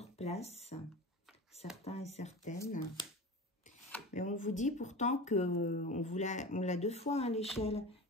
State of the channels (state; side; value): normal; both; correlation 0.31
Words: certains et certaines. Mais on vous dit pourtant que on l'a 2 fois, hein, l'échelle.